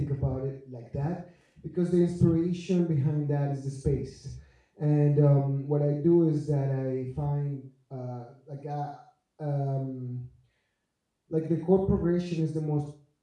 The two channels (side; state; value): both; identical; correlation 1.00